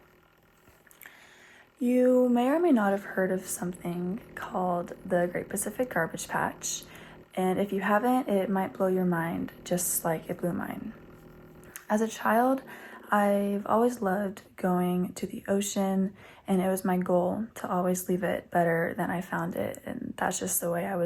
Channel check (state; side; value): identical; both; correlation 1.00